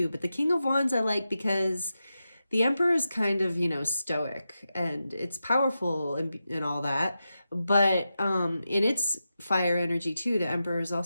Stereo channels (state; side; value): inverted; both; correlation -0.90